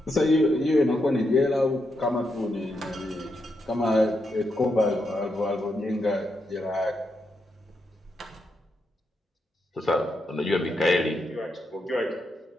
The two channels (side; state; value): both; normal; correlation 0.83